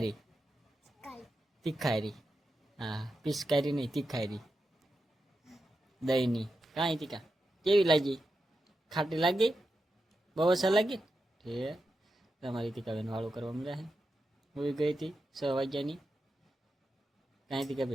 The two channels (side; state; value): both; normal; correlation 0.89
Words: તીખારી હા પિચકારી નહીં તીખારી દહીંની કાંઈ તીકા કેવી લાગી ખાટી લાગી બહુ અસર લાગી ઠીક તમારી ટીકાબેન વાળું કરવા મળ્યા છે હોઈ ગઈ હતી 6 વાગ્યાની કાંઈ